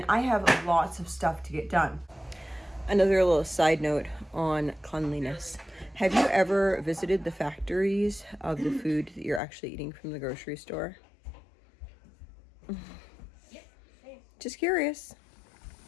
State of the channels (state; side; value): drops out; right; at 9.4 s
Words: I have lots of stuff to get done. Another little side note on cleanliness. Have you ever visited the factories of the food that you're actually eating from the grocery store? Just curious.